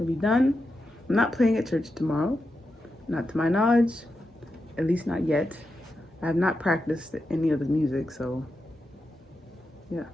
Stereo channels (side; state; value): both; normal; correlation 0.88